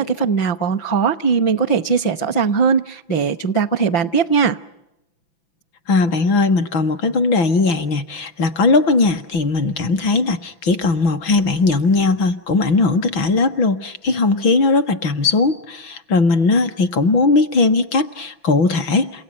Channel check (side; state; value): right; late; 5.9 ms